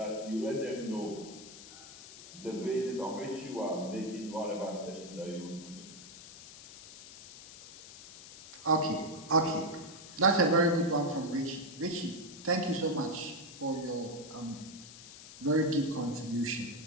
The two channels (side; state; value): left; noise; hiss, 16 dB below the sound